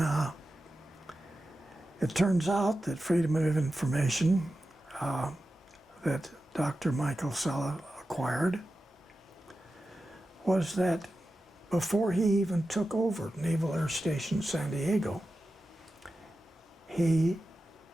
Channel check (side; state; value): both; normal; correlation 0.92